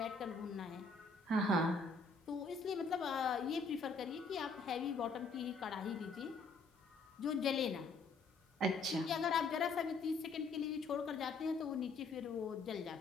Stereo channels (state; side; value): quieter; right; 3.9 dB